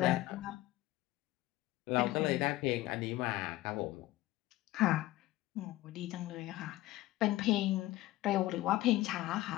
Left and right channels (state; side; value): quieter; right; 17.0 dB